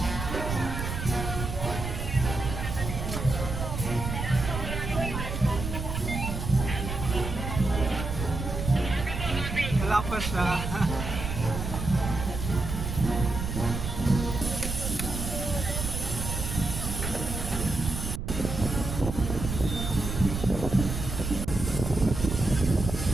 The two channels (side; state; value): right; noise; rumble, 4 dB below the sound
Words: Wala pa siya.